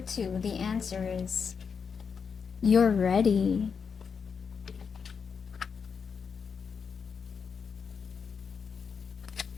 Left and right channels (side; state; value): right; quieter; 6.1 dB